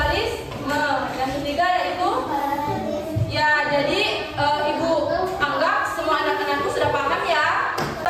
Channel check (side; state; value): both; identical; correlation 1.00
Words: Yang ketiga yaitu ya, jadi ibu anggap semua anak-anakku sudah paham ya.